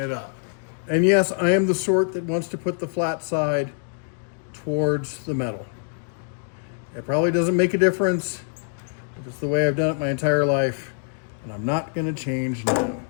up. And yes, I am the sort that wants to put the flat side towards the metal. It probably doesn't make a difference, but it's the way I've done it my entire life, and I'm not going to change now.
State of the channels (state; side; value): silent; right; digital silence